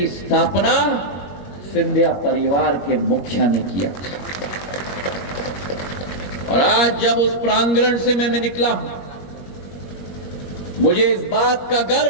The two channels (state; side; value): late; right; 21 ms